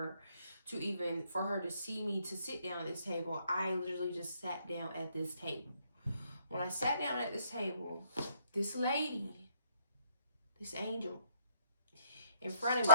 to even, for her to see me to sit down at this table. I literally just sat down at this table. When I sat down at this table, this lady, this angel, in front of me,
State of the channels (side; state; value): both; inverted; correlation -0.69